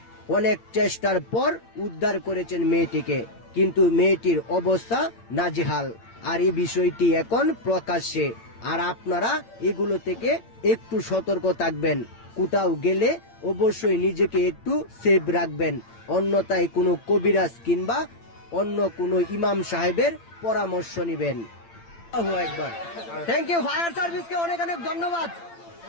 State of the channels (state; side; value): late; right; 8.8 ms